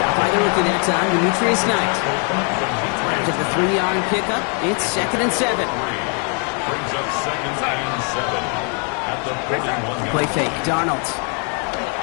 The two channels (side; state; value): right; quieter; 39.3 dB